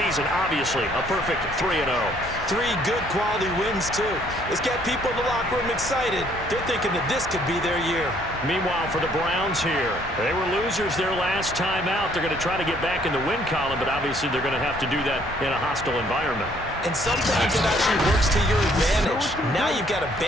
Obviously, a perfect 3-0. 3 good quality wins, too. It's got people in the locker room excited. They're thinking that this could be their year. Meanwhile, for the Browns here, they were losers their last time out. They're going to try to get back in the win column, but obviously they're going to have to do that in a hostile environment. And sometimes it actually works to your advantage. Now you've got to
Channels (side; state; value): both; normal; correlation 0.64